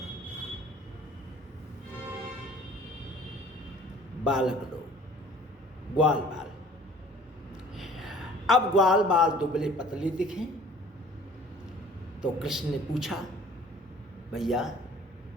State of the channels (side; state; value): both; normal; correlation 0.51